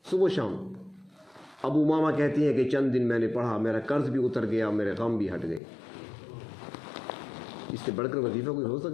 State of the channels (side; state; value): right; drops out; at 5.6 s